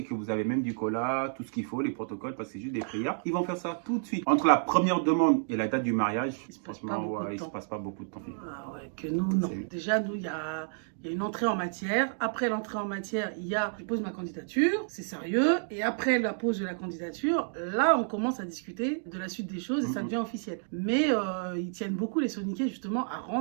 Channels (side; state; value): left; silent; digital silence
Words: que vous avez même du cola, tout ce qu'il faut, les protocoles, parce que c'est juste des prières, ils vont faire ça tout de suite. Entre la première demande et la date du mariage, Il se passe franchement, pas beaucoup de il se temps. passe pas beaucoup de temps. Ah ouais, que nous, non. C'est- Déjà, nous, il y a une entrée en matière. Après l'entrée en matière, il y a je pose ma candidature, c'est sérieux. Et après la pose de la candidature, là, on commence à discuter de la suite des choses et ça devient officiel. Mais ils tiennent beaucoup, les Soniquais, justement, à